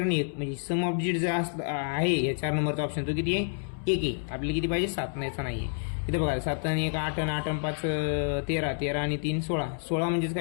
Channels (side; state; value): right; silent; 59 dB below the other